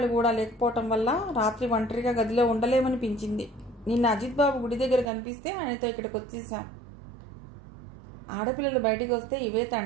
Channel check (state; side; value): drops out; left; at 5.1 s